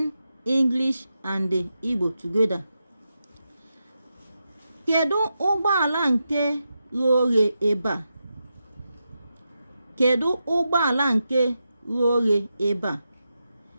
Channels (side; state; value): both; inverted; correlation -0.88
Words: English and the Igbo together. Kedu ụgbọala nke ghe oghe ebe a? Kedu ụgbọala nke ghe oghe ebe a?